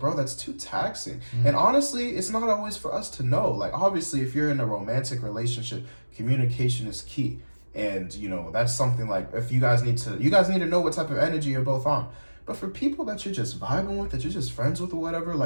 that's too taxing. And honestly, it's not always for us to know. Like, obviously, if you're in a romantic relationship, communication is key. And, you know, that's something like, if you guys need to know what type of energy you're both on. But for people that you're just vibing with, that you're just friends with or whatever,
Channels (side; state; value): both; inverted; correlation -1.00